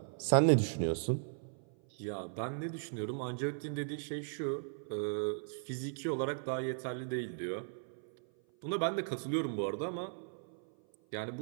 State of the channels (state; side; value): silent; left; 53 dB below the other